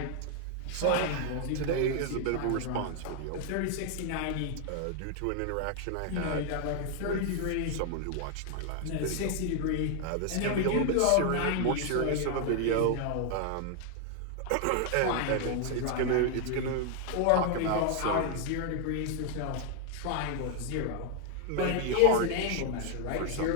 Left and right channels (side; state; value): both; different; correlation 0.00